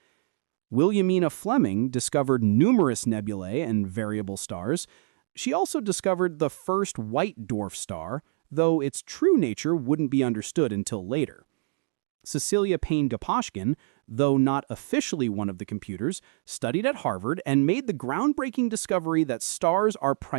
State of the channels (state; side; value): silent; left; 61 dB below the other